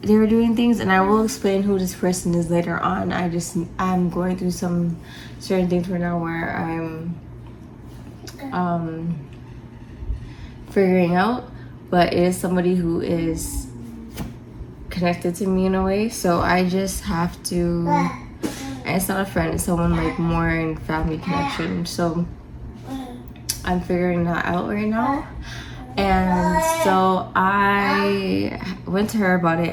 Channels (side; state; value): both; identical; correlation 1.00